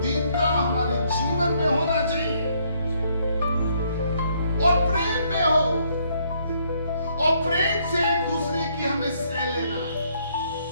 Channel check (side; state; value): both; inverted; correlation -0.69